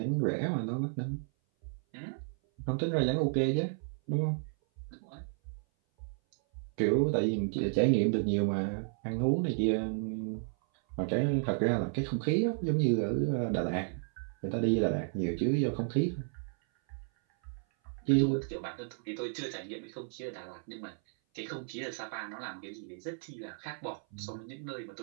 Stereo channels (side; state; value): left; silent; 56 dB below the other